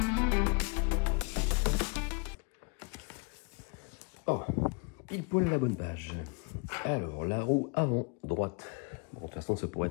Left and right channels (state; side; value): quieter; right; 34.5 dB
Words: Il pointe la bonne page. Alors, la roue avant droite. Bon, de toute façon, ça pourrait